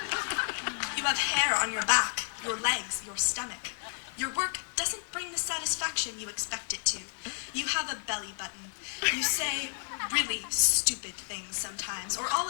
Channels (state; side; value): silent; right; digital silence